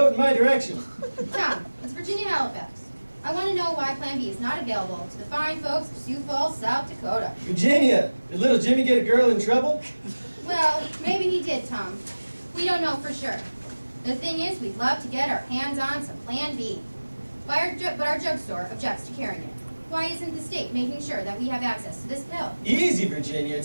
in my direction? Tom, it's Virginia Halifax. I want to know why Plan B is not available to the fine folks of Sioux Falls, South Dakota. Virginia, did little Jimmy get a girl in trouble? Well, maybe he did, Tom. We don't know for sure. The thing is, we'd love to get our hands on some Plan B. But our drugstore objects to carrying it. Why isn't the state making sure that we have access to this pill? Easy, Virginia.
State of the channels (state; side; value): inverted; both; correlation -1.00